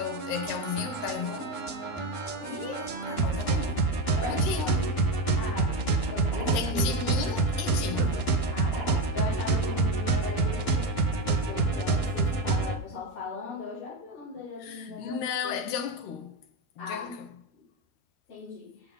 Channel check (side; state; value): right; late; 13 ms